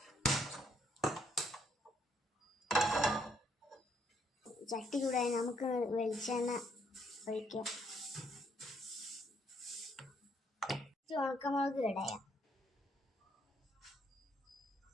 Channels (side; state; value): both; normal; correlation 0.70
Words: ചട്ടി ചൂടായി നമുക്ക് വെളിച്ചെണ്ണ ഒഴിക്കാം. ഉണക്കമുളക് ഇടയാം,